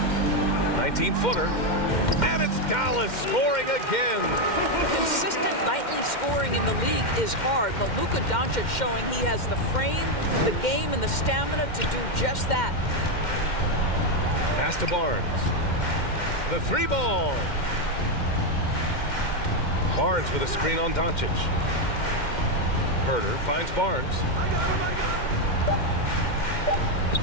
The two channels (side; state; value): right; late; 2.1 ms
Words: 19-footer. And it's Dallas scoring again. Consistent nightly scoring in the league is hard, but Luka Doncic showing he has the frame, the game, and the stamina to do just that. Pass to Barnes. The 3 ball. Barnes with a screen on Doncic. Herter finds Barnes.